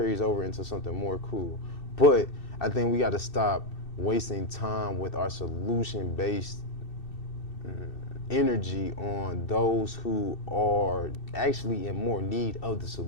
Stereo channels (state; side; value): late; right; 2.6 ms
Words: over into something more, cool. But I think we got to stop wasting time with our solution-based energy on those who are actually in more need of the